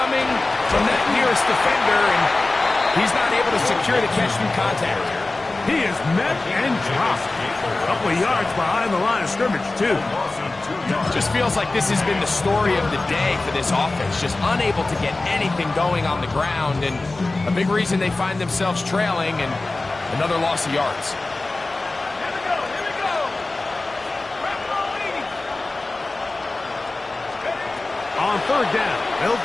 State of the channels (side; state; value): right; quieter; 3.2 dB